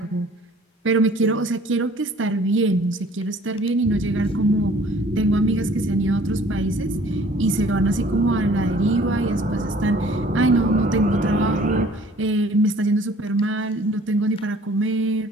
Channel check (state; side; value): normal; both; correlation 0.53